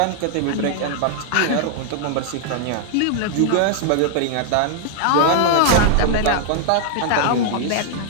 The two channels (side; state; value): both; different; correlation -0.01